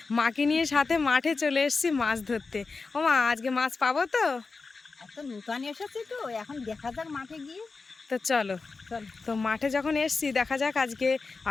মাকে নিয়ে সাথে মাঠে চলে এসেছি মাছ ধরতে। ও মা, আজকে মাছ পাবো তো? এত নূতন এসেছি তো, এখন দেখা যাক মাঠে গিয়ে। তো চলো, তো মাঠে যখন এসছি দেখা যাক আজকে,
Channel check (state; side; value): quieter; right; 4.3 dB